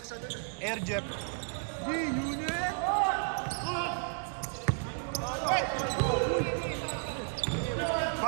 Air Jeff. Unit.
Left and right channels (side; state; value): left; silent; digital silence